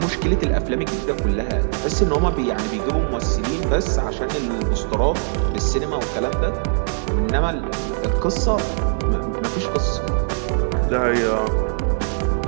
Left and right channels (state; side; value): silent; left; digital silence